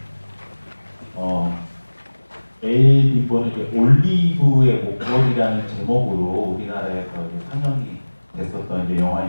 엘빈보는 이제 올리브의 목걸이라는 제목으로 우리나라에서 이제 상영이 됐었던 이제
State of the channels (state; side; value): inverted; both; correlation -1.00